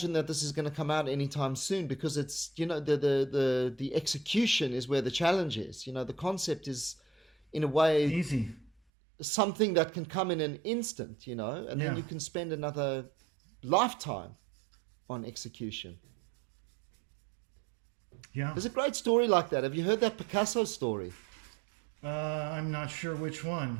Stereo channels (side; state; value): left; drops out; at 8.7 s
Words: that this is going to come out anytime soon, because it's, you know, the execution is where the challenge is. You know, the concept is, in a way, easy. Something that can come in an instant, you know, and then you can spend another lifetime on execution. Yeah. There's a great story like that. Have you heard that Picasso story? I'm not sure which